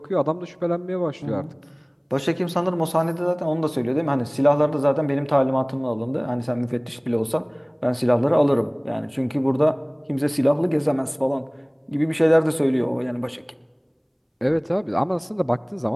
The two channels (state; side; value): identical; both; correlation 1.00